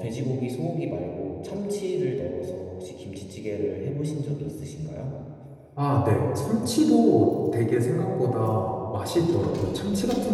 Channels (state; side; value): identical; both; correlation 1.00